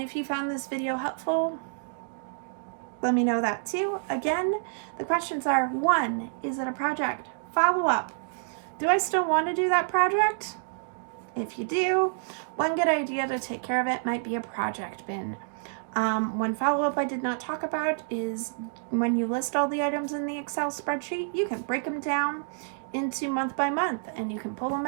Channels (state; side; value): silent; left; digital silence